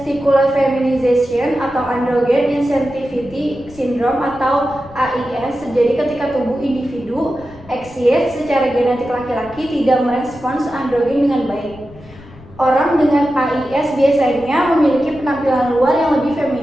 feminization atau androgen insensitivity syndrome atau AIS terjadi ketika tubuh individu XX secara genetik laki-laki tidak merespons androgen dengan baik. Orang dengan AIS biasanya memiliki penampilan luar yang lebih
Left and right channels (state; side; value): noise; left; rumble, 21 dB below the sound